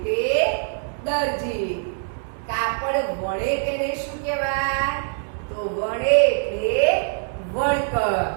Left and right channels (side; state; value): left; silent; digital silence